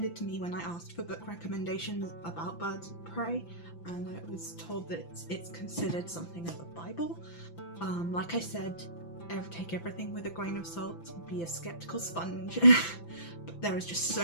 to me when I asked for book recommendations about birds of prey, and I was told that it's considered something of a Bible. Like I said, take everything with a grain of salt, be a skeptical sponge, but there is just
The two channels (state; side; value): late; right; 5.9 ms